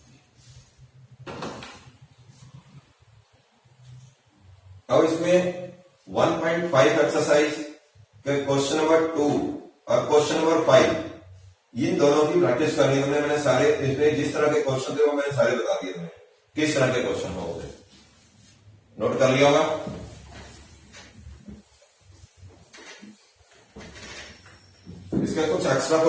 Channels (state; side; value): identical; both; correlation 1.00